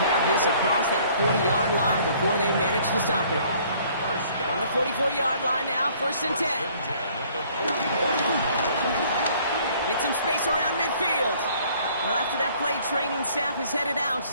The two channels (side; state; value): both; inverted; correlation -0.58